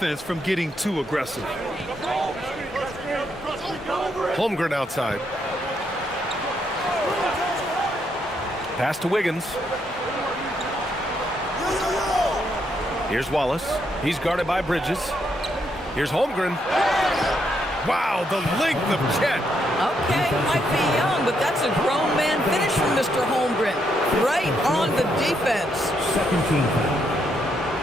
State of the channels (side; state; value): both; normal; correlation 0.77